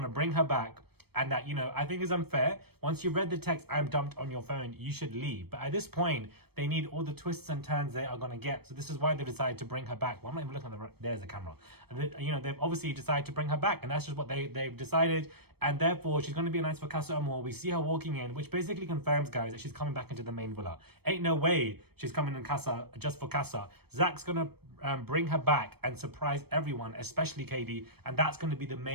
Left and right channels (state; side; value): late; left; 0.97 ms